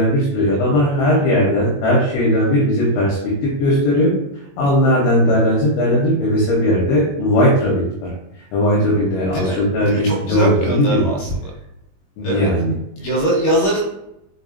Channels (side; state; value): right; late; 21 ms